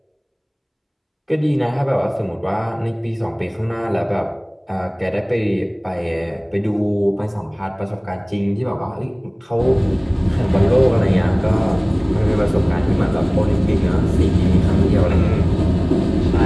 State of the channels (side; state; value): both; identical; correlation 1.00